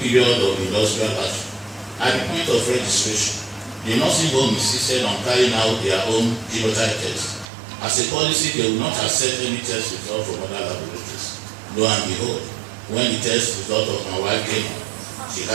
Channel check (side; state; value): left; drops out; at 7.5 s